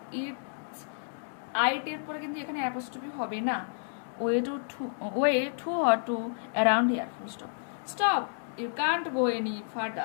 ইটস আইটের পরে কিন্তু এখানে অ্যাপোস্ট্রফি হবে না, way too hot to around here full stop. Stop, you can't go any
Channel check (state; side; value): silent; right; digital silence